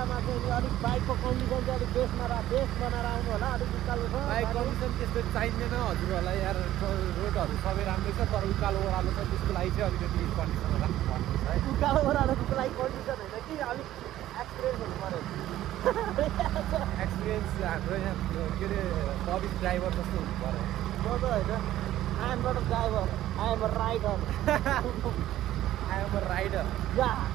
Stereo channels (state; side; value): quieter; left; 13.7 dB